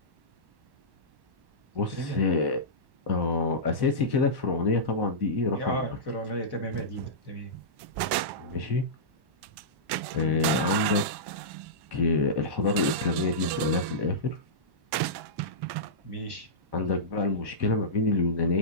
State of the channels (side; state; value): left; late; 1.1 ms